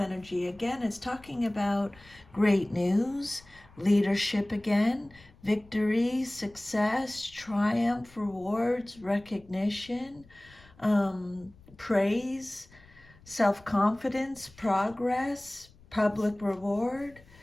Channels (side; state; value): left; noise; rumble, 25 dB below the sound